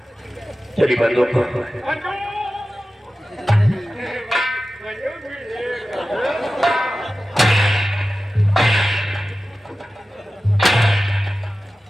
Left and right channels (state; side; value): normal; both; correlation 0.95